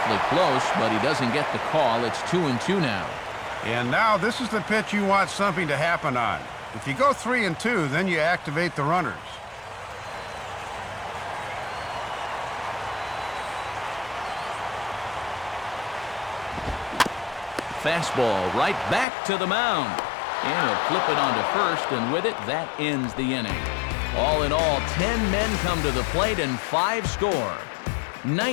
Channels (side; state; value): right; drops out; at 19.1 s